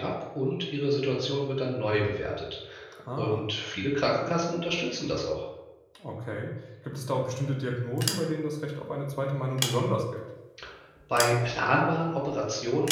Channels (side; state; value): both; identical; correlation 1.00